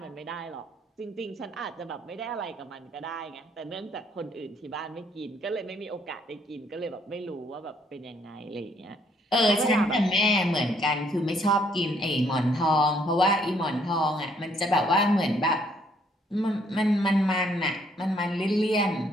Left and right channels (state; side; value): normal; both; correlation 0.67